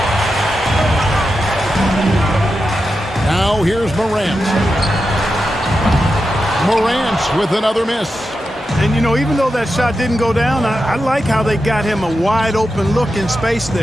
Now here's Morant. Morant with another miss. And, you know, even though that shot didn't go down, I like how they got him a wide open look in space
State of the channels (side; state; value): both; normal; correlation 0.89